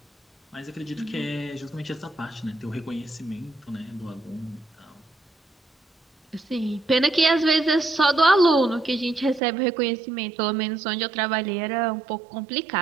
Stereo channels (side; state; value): left; drops out; at 9.4 s